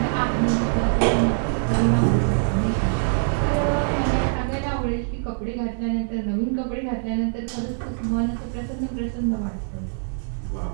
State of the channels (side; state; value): left; silent; 63 dB below the other